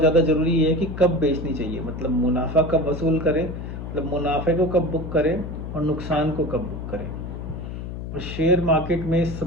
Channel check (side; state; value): left; noise; hum, 7 dB below the sound